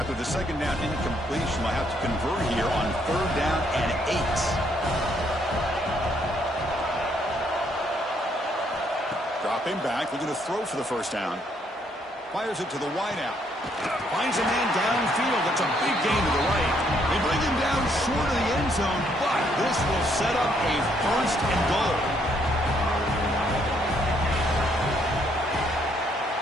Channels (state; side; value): normal; both; correlation 0.70